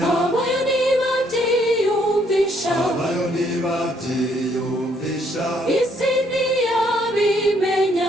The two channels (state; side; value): normal; both; correlation 0.68